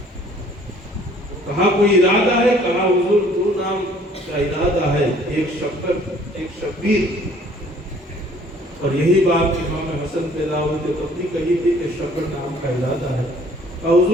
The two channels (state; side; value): normal; both; correlation 0.57